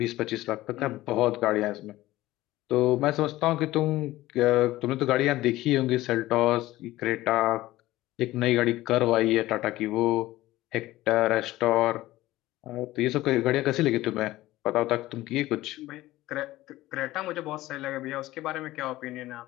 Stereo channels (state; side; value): quieter; right; 16.8 dB